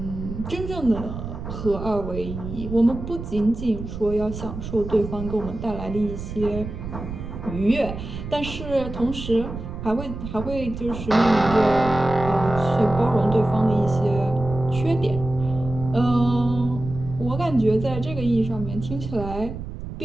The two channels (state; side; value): noise; right; rumble, 8 dB below the sound